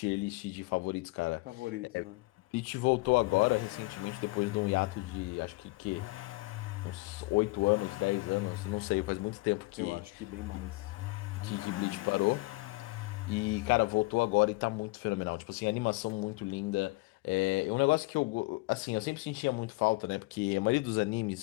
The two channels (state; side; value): quieter; right; 23.5 dB